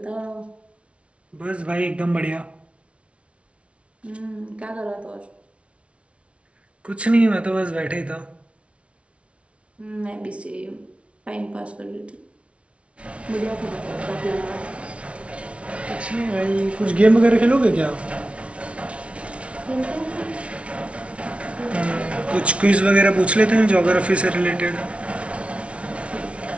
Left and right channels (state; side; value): late; left; 0.061 ms